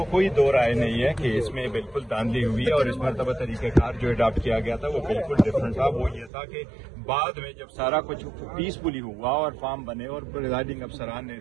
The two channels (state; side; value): drops out; left; at 6.3 s